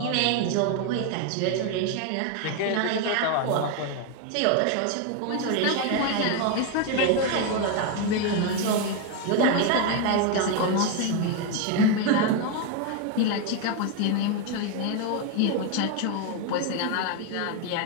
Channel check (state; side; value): different; both; correlation 0.01